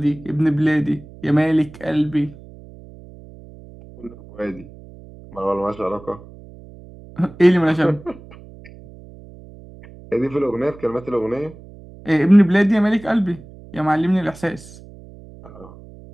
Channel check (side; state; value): right; noise; hum, 20 dB below the sound